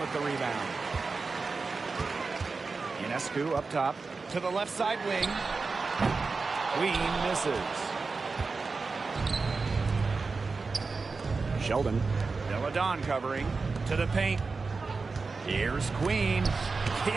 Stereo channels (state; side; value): quieter; left; 4.3 dB